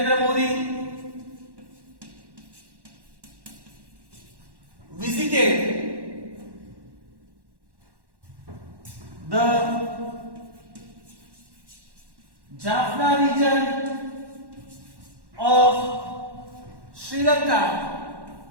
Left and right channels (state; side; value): late; left; 1.1 ms